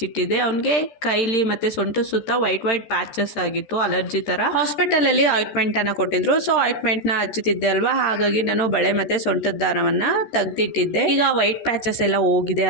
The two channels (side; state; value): right; late; 13 ms